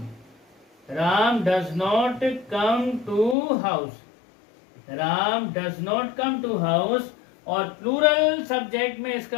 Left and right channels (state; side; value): drops out; right; at 3.4 s